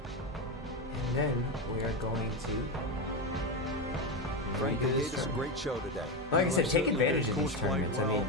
And then we are going to. Frank, redo you this gave us a tournament. great show today. Like I said, take certainly advantage did. of these Course played tournaments. I well. mean,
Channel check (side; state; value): both; normal; correlation 0.13